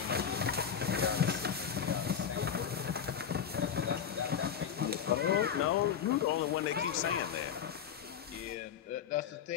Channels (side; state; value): right; quieter; 8.0 dB